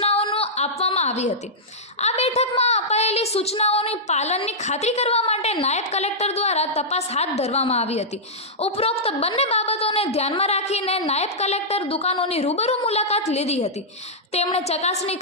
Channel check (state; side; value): normal; both; correlation -0.10